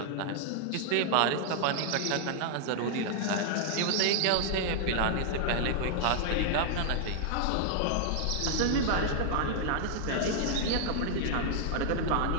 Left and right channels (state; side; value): different; both; correlation 0.00